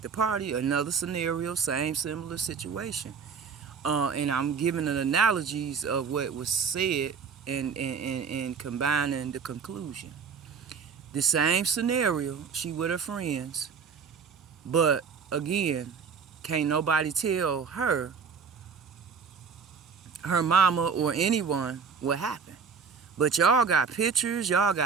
the party, another scenario, same similar situation. And I'm giving an analogies of what was said and combining the conclusion. The same scenario, she with her friends, but again, can't nobody tell her mama or anyone what happened. But y'all got pictures, y'all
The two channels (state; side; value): quieter; left; 6.0 dB